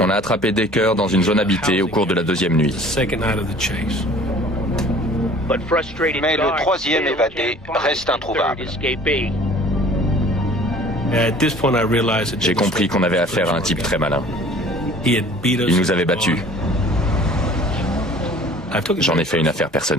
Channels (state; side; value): normal; both; correlation 0.49